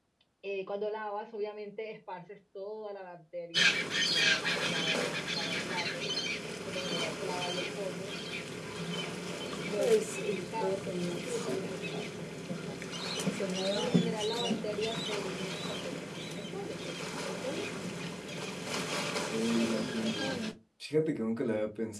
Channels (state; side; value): identical; both; correlation 1.00